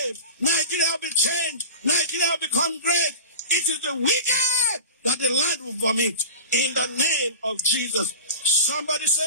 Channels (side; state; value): both; inverted; correlation -0.33